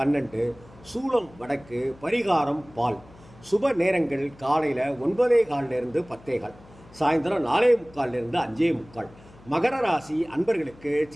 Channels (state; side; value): noise; left; hum, 24 dB below the sound